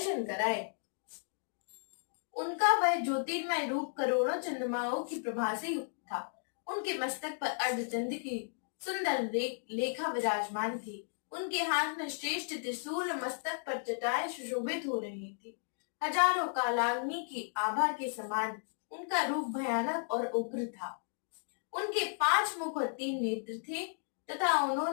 कराए। उनका वह ज्योतिर्मय रूप करोड़ों चंद्रमाओं की प्रभा से युक्त था। उनके मस्तक पर अर्धचंद्र की सुंदर लेखा विराजमान थी। उनके हाथ में श्रेष्ठ त्रिशूल, मस्तक पर जटाएं सुशोभित हो रही थी। हजारों कालाग्नि की आभा के समान उनका रूप भयानक और उग्र था। उनके 5 मुख और 3 नेत्र थे तथा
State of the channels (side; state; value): right; silent; digital silence